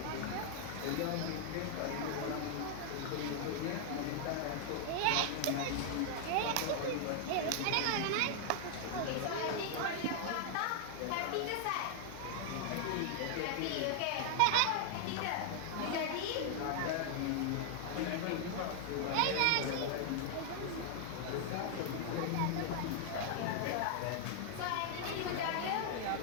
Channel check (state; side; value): different; both; correlation 0.00